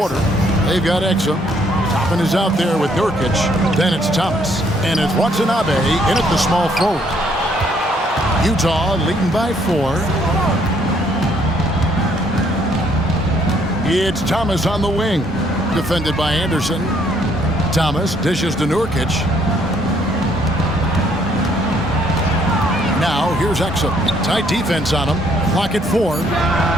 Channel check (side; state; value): both; normal; correlation 0.67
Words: They've got Exum. Toppin is out there with Nurkic. Then it's Thomas. And it's Watanabe in at the small forward. Utah leading by 4. It's Thomas on the wing. Defended by Anderson. Thomas dishes to Nurkic. Now here's Exum. Tight defense on him. Clock at 4.